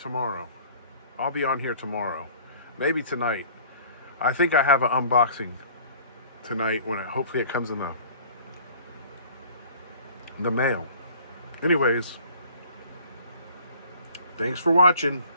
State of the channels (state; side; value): inverted; both; correlation -0.50